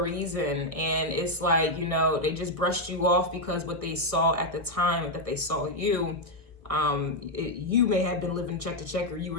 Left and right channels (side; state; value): left; late; 1.3 ms